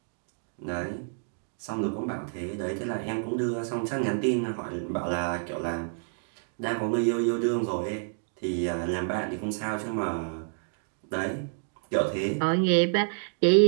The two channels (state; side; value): silent; left; digital silence